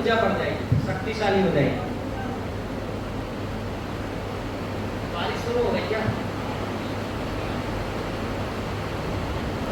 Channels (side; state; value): both; identical; correlation 1.00